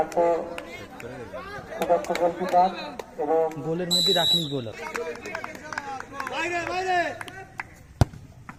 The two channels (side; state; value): both; identical; correlation 1.00